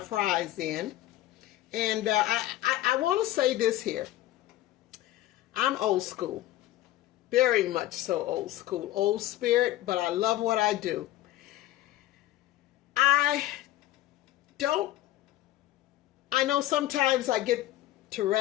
in. And I want to say this here. I'm old school. Very much so old school. Old spirit, but I love what I do. I know sometimes I get to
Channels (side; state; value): right; quieter; 14.9 dB